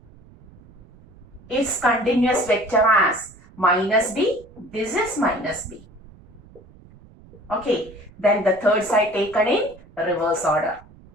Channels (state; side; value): noise; right; rumble, 24 dB below the sound